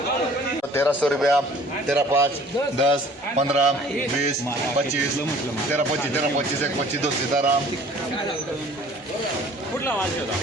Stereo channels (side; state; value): both; normal; correlation 0.51